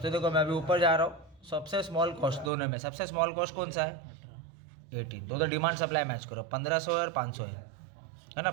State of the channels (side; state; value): left; drops out; at 2.5 s